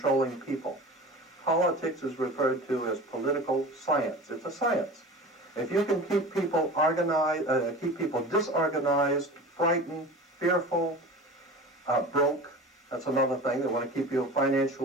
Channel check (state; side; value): normal; both; correlation 0.35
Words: people. Politics is referred to as political science. It's a science. If you can keep people organized, keep people disorganized, frightened, fearful, broke, that's another thing. They want to keep you